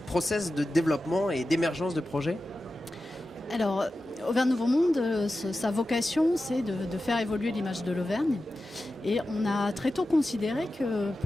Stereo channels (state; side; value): normal; both; correlation 0.93